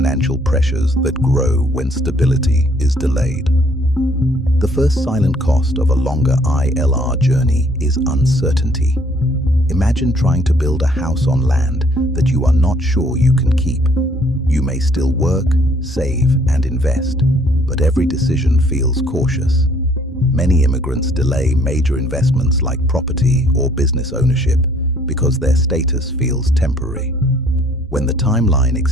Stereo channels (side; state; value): both; normal; correlation 0.62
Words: pressures that grow when stability is delayed. The first silent cost of a longer ILR journey is uncertainty. Imagine trying to build a house on land that you are not sure you can keep. You may still work, save, and invest, but every decision feels cautious. Many immigrants delay major investments like property or business ownership because their status feels temporary. When the timeline